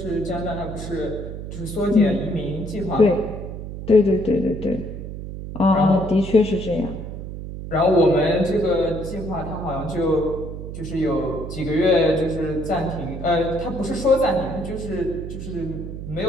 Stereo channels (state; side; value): noise; right; hum, 8 dB below the sound